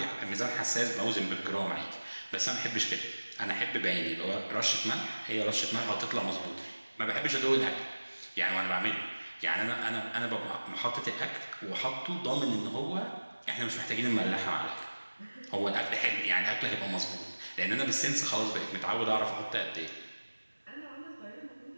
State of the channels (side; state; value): both; inverted; correlation -1.00